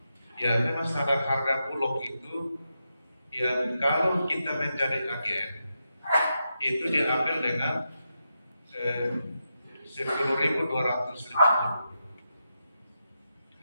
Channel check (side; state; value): both; inverted; correlation -0.86